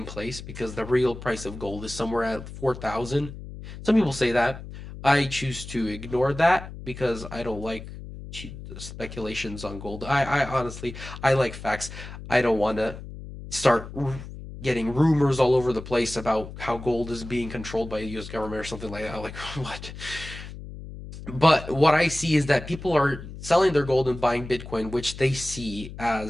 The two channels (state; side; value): noise; left; hum, 12 dB below the sound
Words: place because the real price of gold is somewhere at 4,000. Some people say that. I choose to ignore that because I don't like speculations on gold. I honestly, I like facts. I don't want to start getting rumors all over the place about how gold is being controlled by the U.S. government or something like that. Like, what? But what I see is that people are selling their gold and buying Bitcoin, which they see